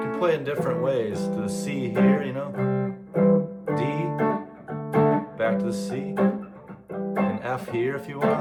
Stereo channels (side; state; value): both; identical; correlation 1.00